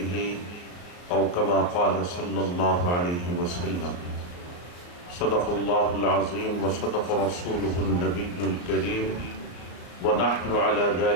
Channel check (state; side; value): late; right; 34 ms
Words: أو كما قال صلى الله عليه وسلم. صدق الله العظيم وصدق رسوله النبي الكريم ونحن على